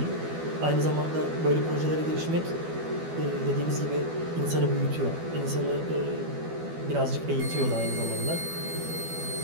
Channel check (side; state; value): left; late; 12 ms